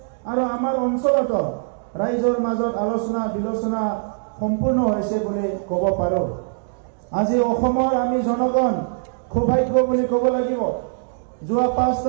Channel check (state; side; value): silent; left; digital silence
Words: আৰু আমাৰ অঞ্চলত ৰাইজৰ মাজত আলোচনা বিলোচনা সম্পূৰ্ণ হৈছে বুলি ক'ব পাৰোঁ। আজি অসমৰ আমি জনগণ সৌভাগ্য বুলি ক'ব লাগিব। যোৱা